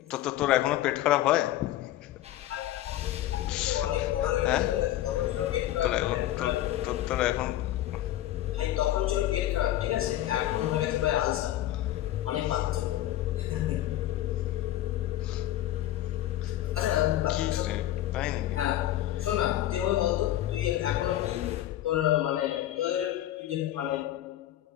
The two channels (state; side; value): quieter; right; 13.6 dB